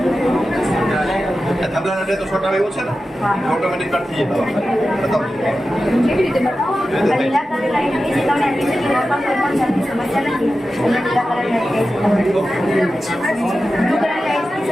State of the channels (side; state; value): both; normal; correlation 0.93